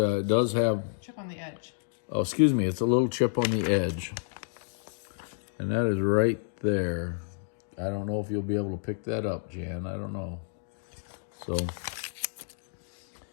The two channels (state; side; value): silent; right; digital silence